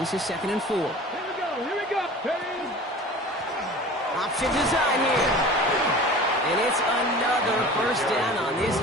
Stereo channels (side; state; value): both; normal; correlation 0.40